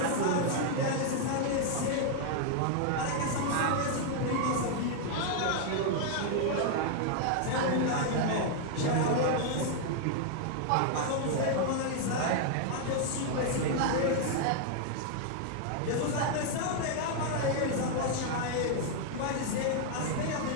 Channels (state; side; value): different; both; correlation 0.00